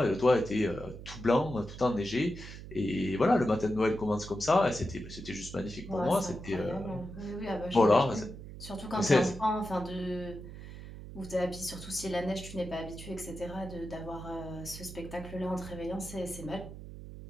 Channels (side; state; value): right; noise; hum, 12 dB below the sound